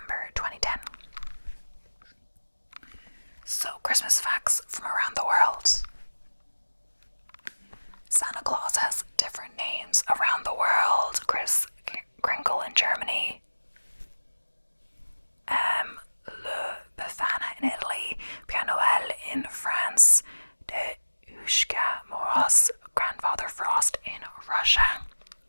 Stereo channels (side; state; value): both; inverted; correlation -1.00